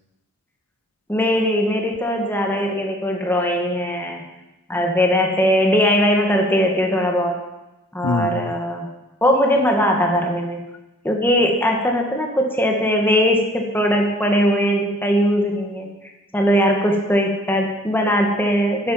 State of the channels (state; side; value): normal; both; correlation 0.55